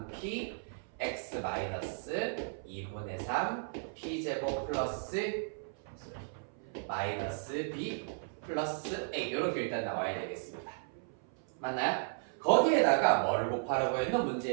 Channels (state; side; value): silent; left; 54 dB below the other